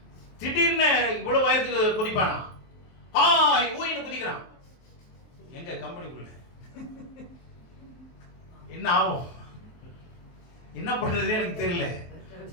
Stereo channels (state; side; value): late; right; 23 ms